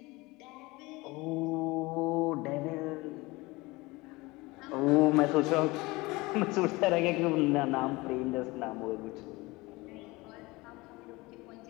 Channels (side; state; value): right; quieter; 22.5 dB